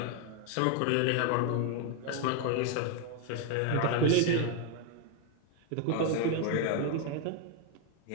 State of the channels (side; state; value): both; different; correlation 0.01